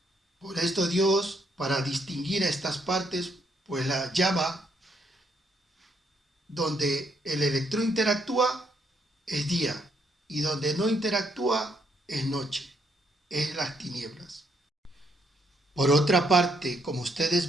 Por esto Dios, para distinguir a estas partes, pues la llama donde el electrón interactúa es día y donde no interactúa es noche, es las tinieblas. Por otra parte, como ustedes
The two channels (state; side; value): normal; both; correlation 0.73